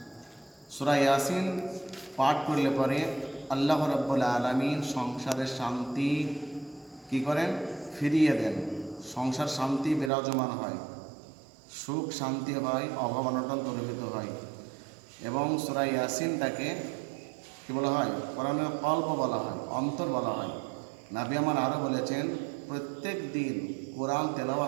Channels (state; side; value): drops out; left; at 10.1 s